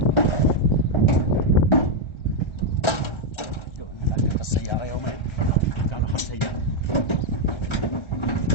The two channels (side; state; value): right; late; 1.3 ms